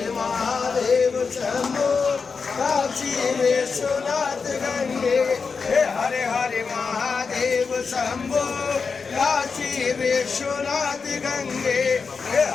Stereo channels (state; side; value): quieter; right; 5.1 dB